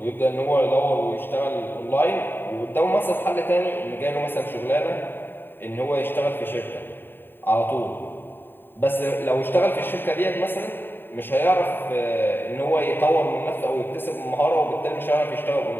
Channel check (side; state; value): right; late; 0.097 ms